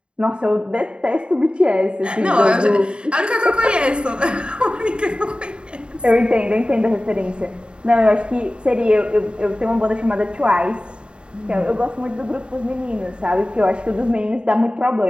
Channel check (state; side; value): late; left; 0.053 ms